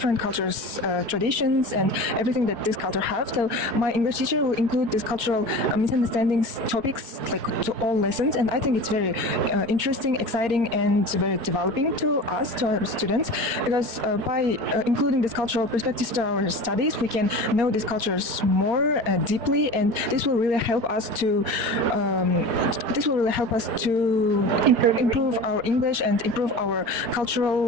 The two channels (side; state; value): left; late; 4.3 ms